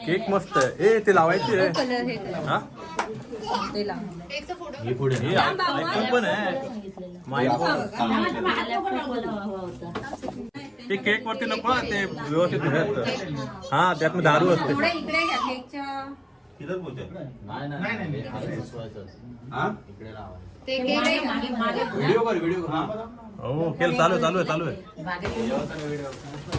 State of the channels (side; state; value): both; identical; correlation 1.00